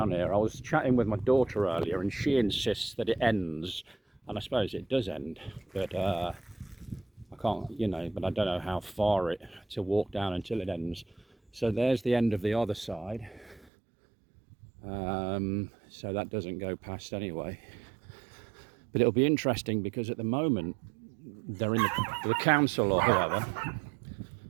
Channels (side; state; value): left; drops out; at 13.7 s